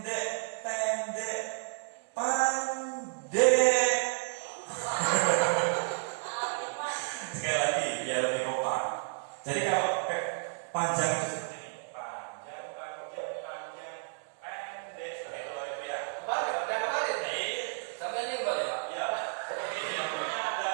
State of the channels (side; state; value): left; silent; digital silence